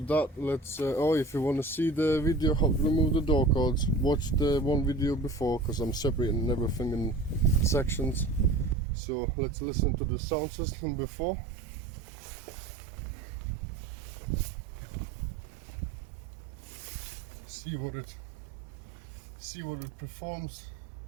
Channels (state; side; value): drops out; left; at 8.8 s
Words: that, let's if you want to see the video how to remove the door cords, watch the one video before, because I'm separating everything in sections. So let's listen to the sound system before. See what it performs.